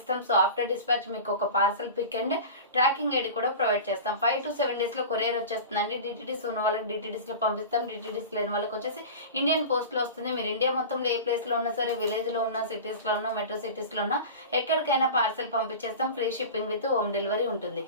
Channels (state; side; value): inverted; both; correlation -0.32